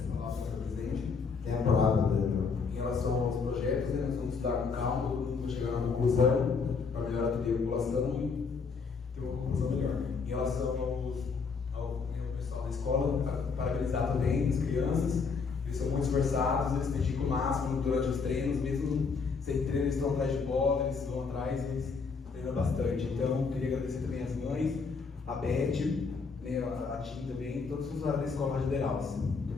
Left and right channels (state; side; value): quieter; right; 5.1 dB